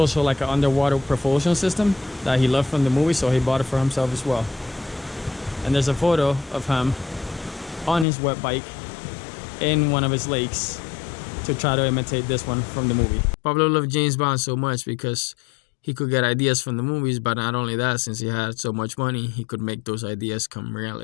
like an underwater propulsion system that he loved from the movie, so he bought it for himself as well. And there's a photo of him on his wet bike in one of his lakes to try to imitate this one from the movie. Pablo loved James Bond so much because he could get ideas from the movies, but not only that, since he had so much money, he could make those ideas come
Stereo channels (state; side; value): drops out; right; at 8.1 s